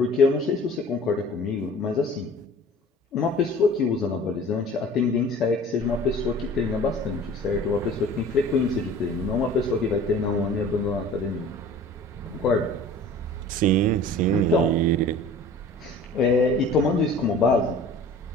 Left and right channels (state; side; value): normal; both; correlation 0.44